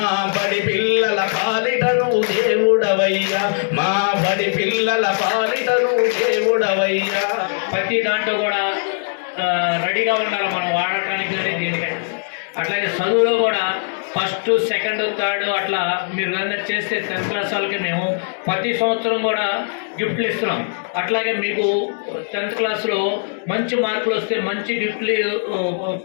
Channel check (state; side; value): silent; right; digital silence